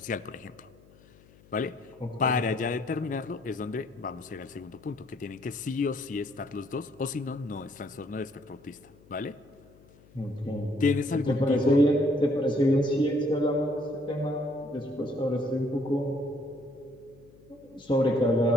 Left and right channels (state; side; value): noise; left; hum, 26 dB below the sound